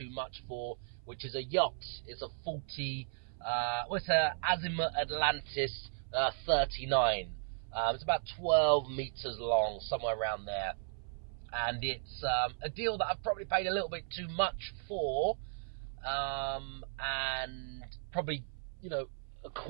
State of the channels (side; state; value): left; silent; 54 dB below the other